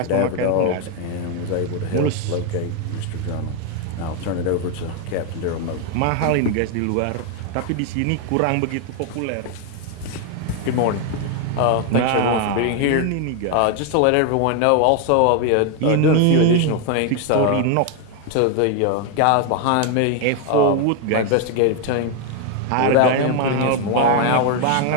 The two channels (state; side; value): different; both; correlation 0.01